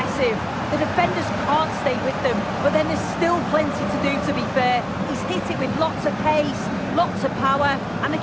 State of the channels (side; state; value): right; noise; hum, 26 dB below the sound